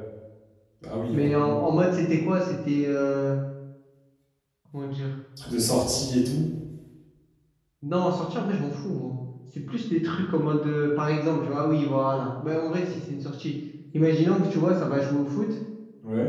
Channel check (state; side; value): identical; both; correlation 1.00